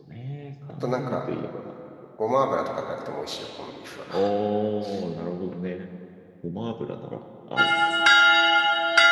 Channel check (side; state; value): both; identical; correlation 1.00